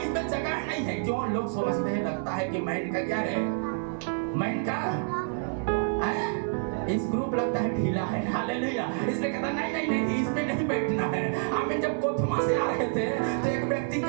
इसमें जगह नहीं है। क्यों? लोग समझते हैं, लगता है कि माइंड का क्या है, माइंड का इस ग्रुप लगता है ढीला है। हालेलुया। इसलिए कहता नहीं नहीं नहीं इसमें नहीं बैठना है। आमीन। जब कोथमा से आ रहे थे तो एक व्यक्ति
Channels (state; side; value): silent; left; 59 dB below the other